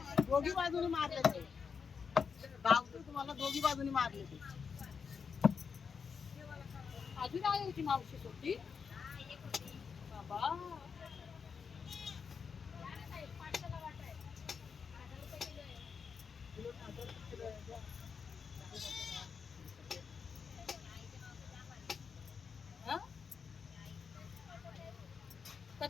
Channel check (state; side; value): quieter; right; 6.0 dB